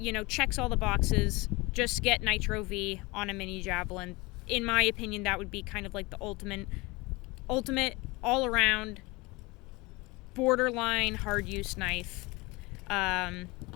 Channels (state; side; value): quieter; right; 24.1 dB